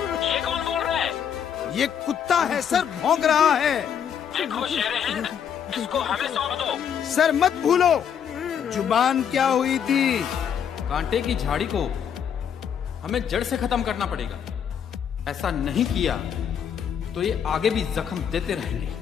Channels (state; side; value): quieter; right; 8.2 dB